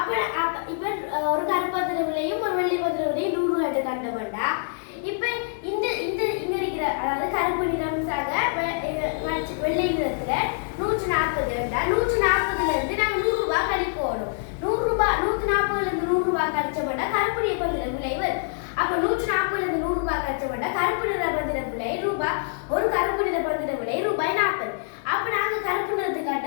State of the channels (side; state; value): right; silent; digital silence